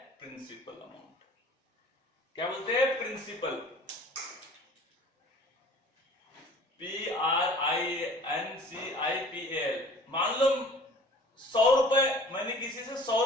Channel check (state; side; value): normal; both; correlation 0.48